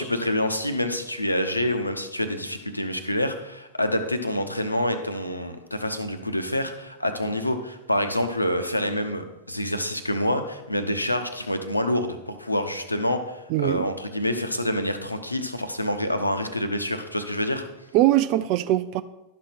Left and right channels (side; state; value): both; inverted; correlation -0.57